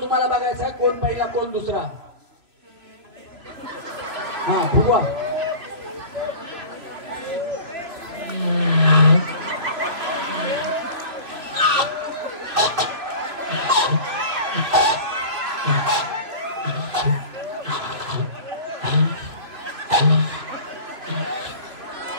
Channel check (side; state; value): left; late; 3.0 ms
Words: तुम्हाला बघायचा आहे, कोण पहिला कोण दुसरा. हा फुगवा.